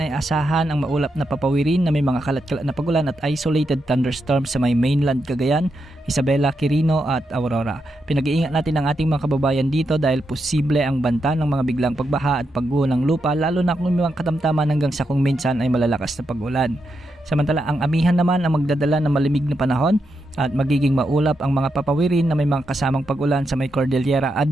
asahan ang maulap na papawirin na may mga kalat-kalat na pagulan at isolated thunderstorms sa may mainland Cagayan, Isabela, Quirino at Aurora. Pinag-iingat natin ang ating mga kababayan dito dahil posible ang banta ng mga biglang pagbaha at pagguho ng lupa lalo na kung may mga katamtaman hanggang sa kung minsan ay malalakas na pag-ulan. Samantala ang amihan naman ang magdadala ng malamig na panahon at magiging maulap ang mga papawirin na may mga kasamang pag-ulan sa may Cordillera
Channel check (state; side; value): normal; both; correlation 0.84